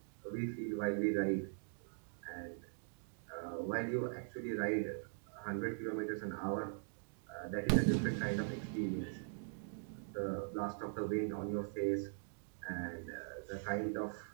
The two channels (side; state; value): left; silent; digital silence